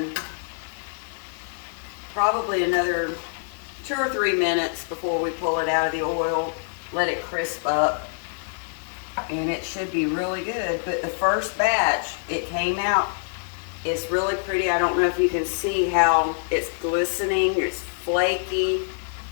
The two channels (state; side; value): silent; right; 62 dB below the other